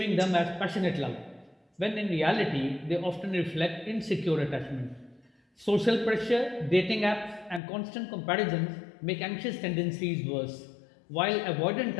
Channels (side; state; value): right; drops out; at 7.6 s